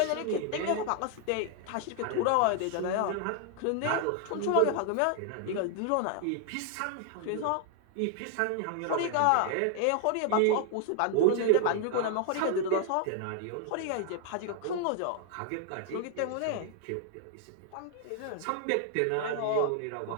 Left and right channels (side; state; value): both; different; correlation 0.00